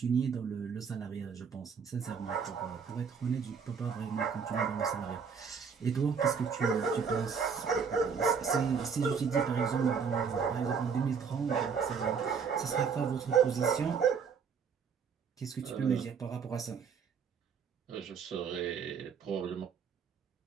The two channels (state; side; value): quieter; left; 6.3 dB